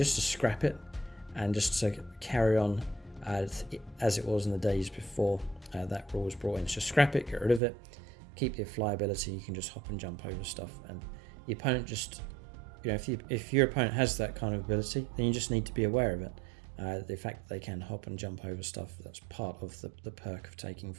to scrap it and just to carry on as it was in the days before that rule was brought in. So scrap it, get rid of it. Keep the flyability, you can just hop and jump over stuff, and the opponent just, if your opponent has that kind of ability, then you just need to be aware of it. The fact that they can hop and jump over stuff, that's part of the perk of taking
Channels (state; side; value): drops out; left; at 7.6 s